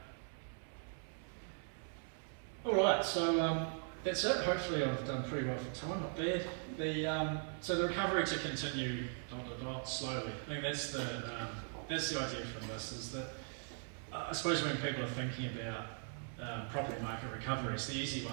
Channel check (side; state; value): left; silent; 51 dB below the other